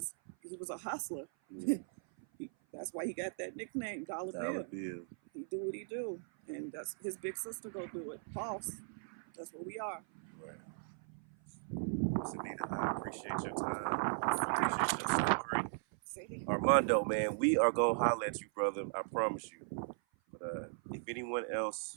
a hustler. That's why he got that nickname, Dollar Bill. He do what he do, and that's his big sister go do it. Boss. That's what we are. Right. Anita, I appreciate your time. I appreciate your story. See? Armando, man, we are gonna holler at you, brother. I promise you. But if anyone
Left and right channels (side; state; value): left; silent; 52 dB below the other